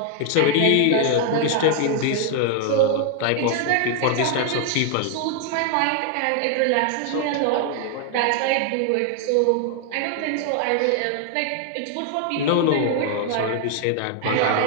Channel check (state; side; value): different; both; correlation 0.00